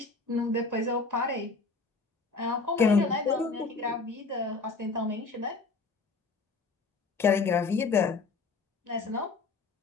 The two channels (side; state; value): right; quieter; 4.1 dB